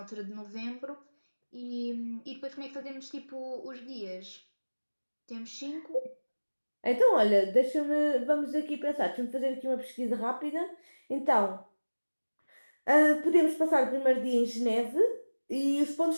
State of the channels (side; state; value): both; inverted; correlation -1.00